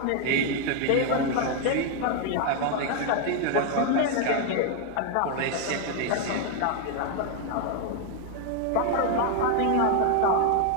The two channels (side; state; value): both; different; correlation 0.01